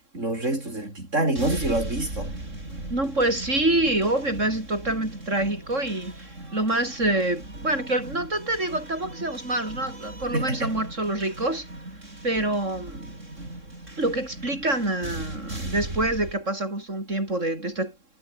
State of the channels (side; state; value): left; late; 3.7 ms